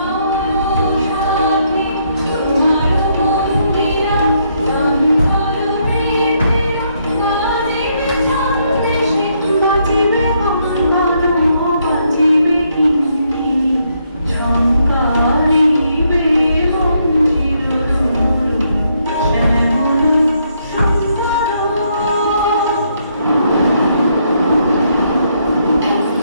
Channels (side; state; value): both; inverted; correlation -0.74